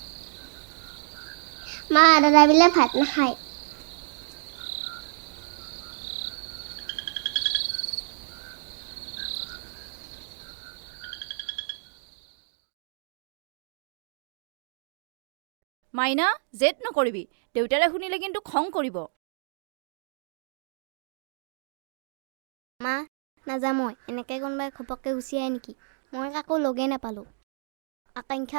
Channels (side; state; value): left; silent; digital silence